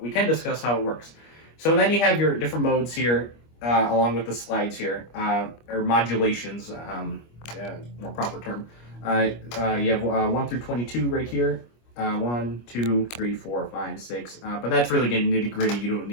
can discuss how it works. So then you have your different modes here, along with the slides here, or modulations, more proper term. You have 1 through 22 right here. 1, 2, 3, 4, 5, 6. But that's really getting nitty gritty. You don't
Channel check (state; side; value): late; right; 25 ms